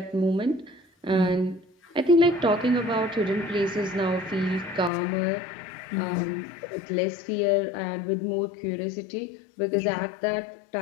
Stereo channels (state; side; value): drops out; right; at 4.9 s